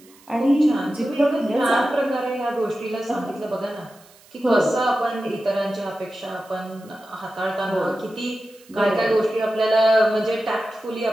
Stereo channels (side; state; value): right; noise; hiss, 27 dB below the sound